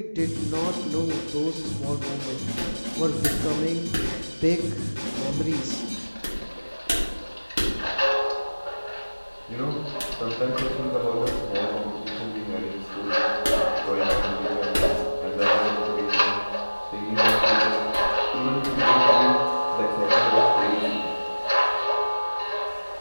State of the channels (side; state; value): both; inverted; correlation -1.00